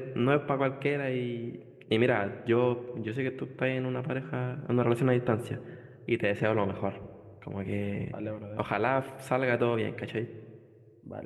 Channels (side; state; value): both; identical; correlation 1.00